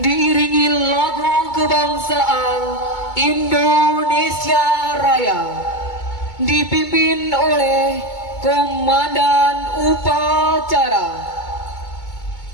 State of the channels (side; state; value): right; late; 2.2 ms